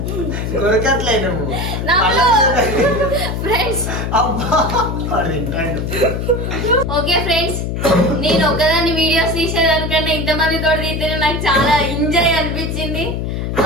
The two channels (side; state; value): left; noise; hum, 3 dB below the sound